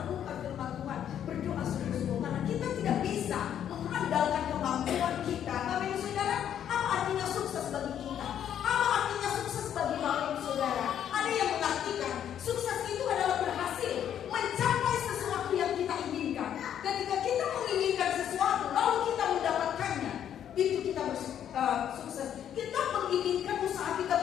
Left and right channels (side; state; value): right; quieter; 9.8 dB